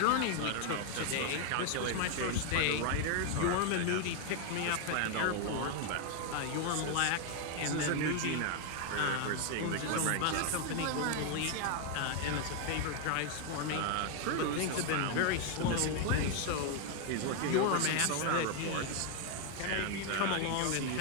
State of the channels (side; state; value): both; different; correlation 0.01